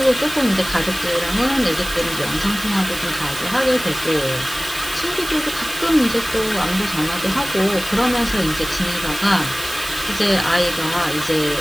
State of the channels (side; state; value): right; noise; hiss, 11 dB below the sound